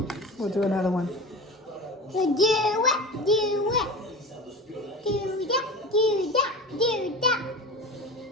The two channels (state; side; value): normal; both; correlation 0.31